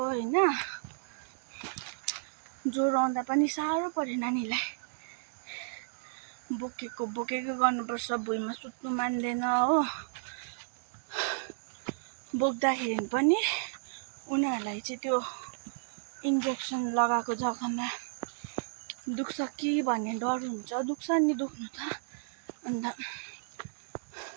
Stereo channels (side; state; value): left; silent; digital silence